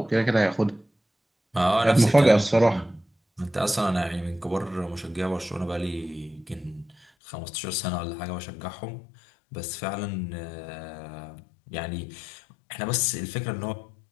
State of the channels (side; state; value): right; drops out; at 7.1 s